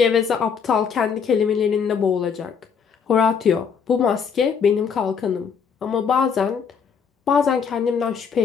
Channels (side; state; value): right; quieter; 6.5 dB